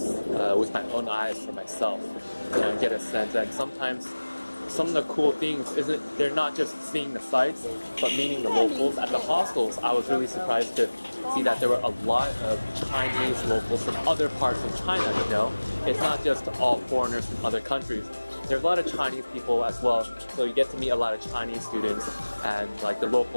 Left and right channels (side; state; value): both; inverted; correlation -1.00